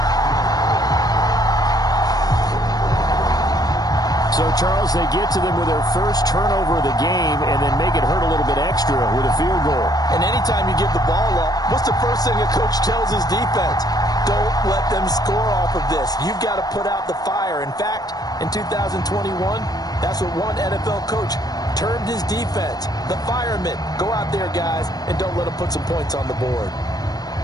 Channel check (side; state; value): right; late; 0.19 ms